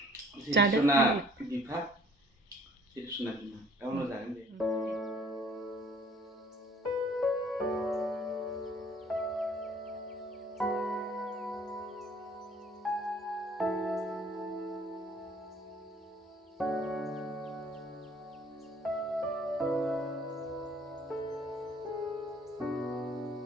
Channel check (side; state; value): both; normal; correlation 0.56